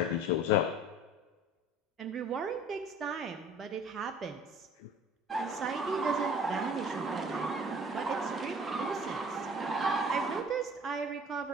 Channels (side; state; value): both; normal; correlation 0.47